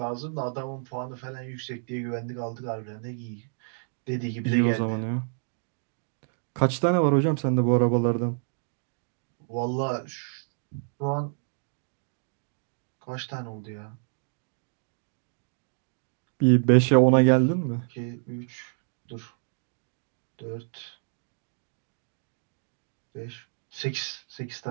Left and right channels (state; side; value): silent; left; digital silence